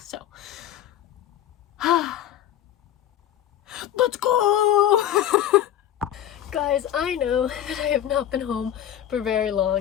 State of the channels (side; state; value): right; quieter; 11.3 dB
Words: let's go. Guys, I know that I have not been home for very